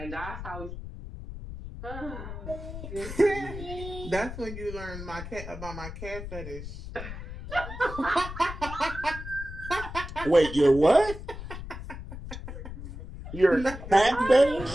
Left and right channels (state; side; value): noise; left; rumble, 10 dB below the sound